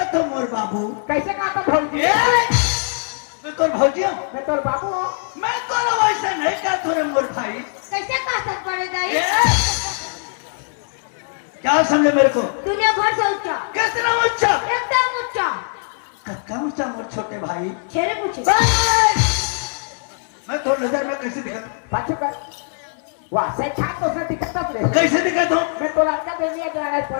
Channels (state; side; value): silent; right; 65 dB below the other